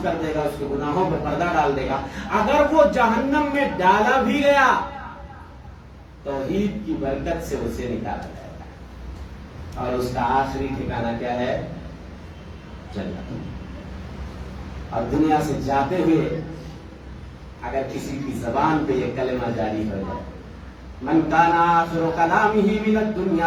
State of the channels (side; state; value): both; identical; correlation 1.00